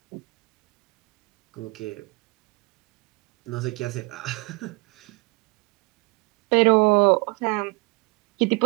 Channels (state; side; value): quieter; left; 26.0 dB